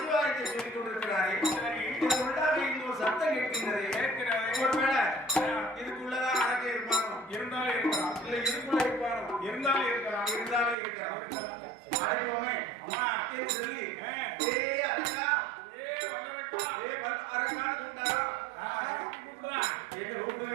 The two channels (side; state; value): left; drops out; at 10.8 s